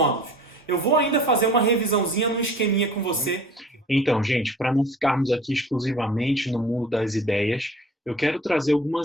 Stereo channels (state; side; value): normal; both; correlation 0.45